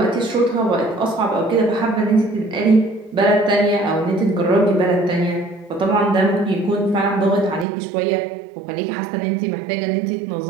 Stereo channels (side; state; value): left; drops out; at 7.7 s